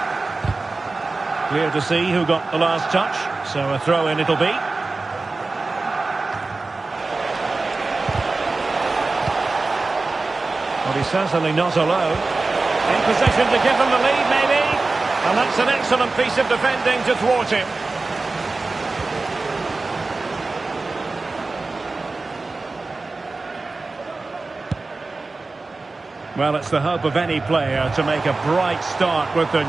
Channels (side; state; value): left; quieter; 3.6 dB